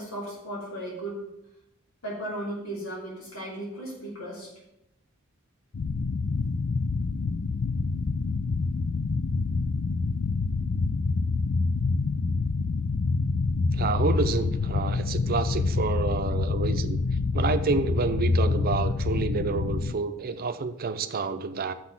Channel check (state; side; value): normal; both; correlation 0.62